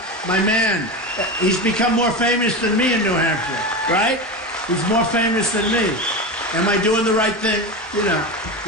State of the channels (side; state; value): both; normal; correlation 0.21